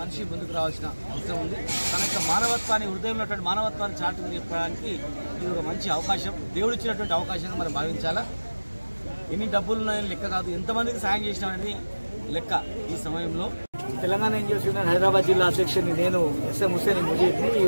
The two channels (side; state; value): both; inverted; correlation -1.00